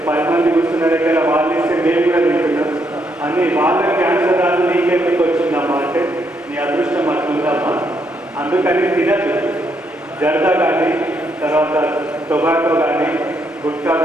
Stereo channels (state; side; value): normal; both; correlation 0.76